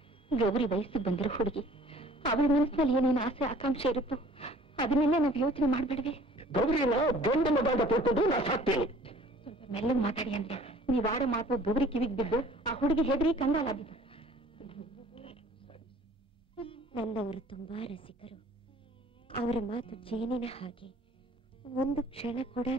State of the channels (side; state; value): both; normal; correlation 0.51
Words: ಗೌರಿ ವಯಸ್ಸಿಗೆ ಬಂದಿರೋ ಹುಡುಗಿ, ಅವಳ ಮನಸ್ಸಿನಲ್ಲಿ ಏನೇನು ಆಸೆ ಆಕಾಂಕ್ಷೆ ಇರುತ್ತೋ ಅದನ್ನೆಲ್ಲ ನಾವು ಯೋಚನೆ ಮಾಡ್ಬೇಡ್ವೆ. ಗೌರಿನ ಗಂಡ ಮಗ ಅಂತ ತಿಳ್ಕೊಂಡು ನಾ ಸಾಕ್ತೇನೆ. ಸ್ವಲ್ಪ ಮೆಲ್ಲಗೆ ಮಾತಾಡಿ ಅಂದ್ರೆ ನೀವ್ ಆಡೋ ಮಾತು ಗೌರಿ ಕಿವಿಗೆ ಬಿದ್ದು ಆ ಹುಡುಗಿ ಹೆದರಿ ಕಂಗಾಲಾಗಿದ್ದು. ನನ್ನವರು ತುಂಬಾ ರಸಿಕರು. ಅವರ ಮಾತು ಜೇನಿನ ಹಾಗೆ, ಒಂದು ಕ್ಷಣ ಕೂಡ